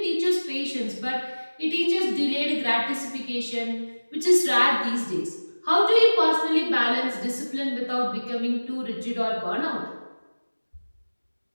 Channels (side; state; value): both; inverted; correlation -1.00